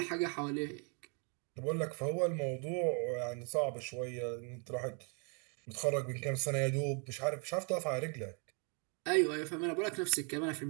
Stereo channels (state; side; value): quieter; left; 38.0 dB